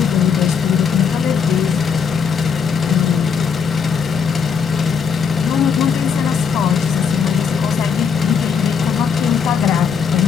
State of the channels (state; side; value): quieter; right; 6.4 dB